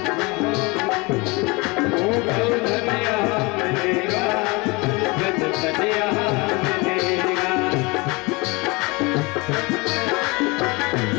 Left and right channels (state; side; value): quieter; right; 26.2 dB